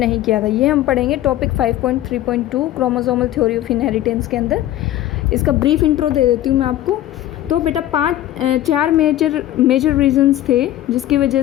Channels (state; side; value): quieter; right; 13.6 dB